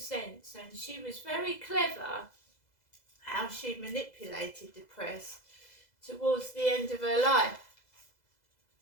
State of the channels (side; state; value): right; late; 2.0 ms